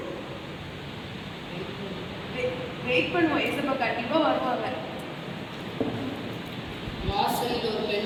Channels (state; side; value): identical; both; correlation 1.00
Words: வெயிட் பண்ணுவோம், ஏசப்பா கண்டிப்பாக வருவாங்க. வாசலில் ஒரு